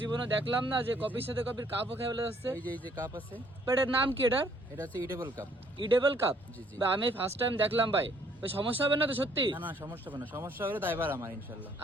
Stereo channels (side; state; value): both; normal; correlation 0.64